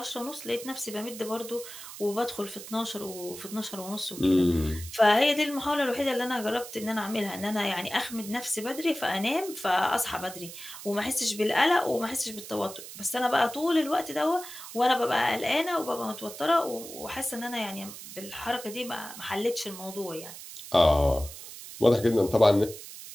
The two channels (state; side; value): noise; right; hiss, 13 dB below the sound